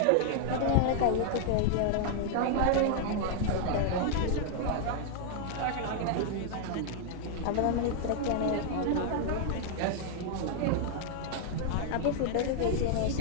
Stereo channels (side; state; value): both; different; correlation 0.00